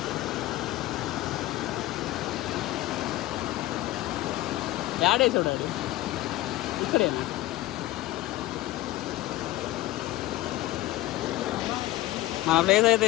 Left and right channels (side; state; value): right; quieter; 16.7 dB